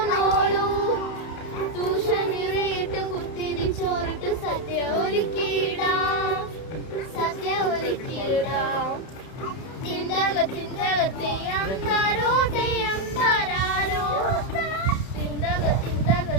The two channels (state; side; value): late; right; 31 ms